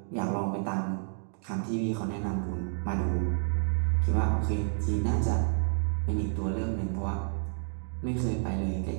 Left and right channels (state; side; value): silent; left; digital silence